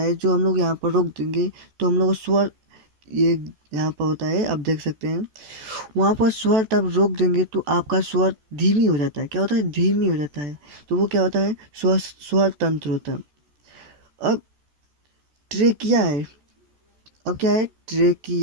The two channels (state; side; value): late; left; 14 ms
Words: जो हम लोग यहाँ पर रोक देंगे तो हम लोग स्वर ये यहाँ पर होता है, आप देख सकते हैं वहाँ पर स्वर तब रोक देंगे तो आपका स्वर धीमी हो जाता है। क्या होता है धीमी हो जाता है, तो वो क्या होता है स्वर तंत्र होता है। अब ट्रेकिया है, अब क्या है